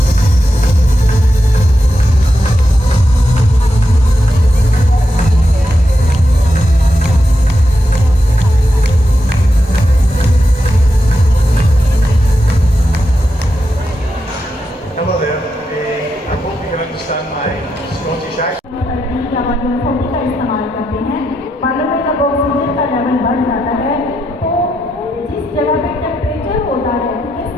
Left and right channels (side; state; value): both; normal; correlation 0.85